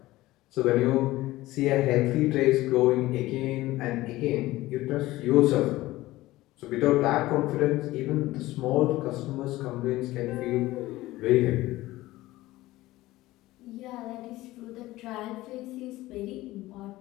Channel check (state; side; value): quieter; right; 17.6 dB